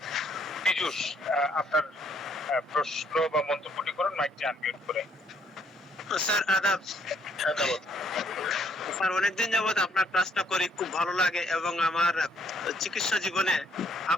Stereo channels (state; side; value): normal; both; correlation 0.67